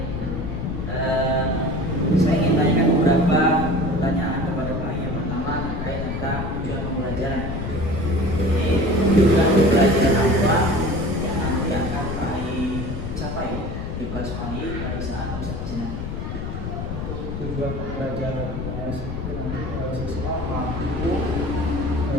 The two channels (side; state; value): left; noise; rumble, 5 dB below the sound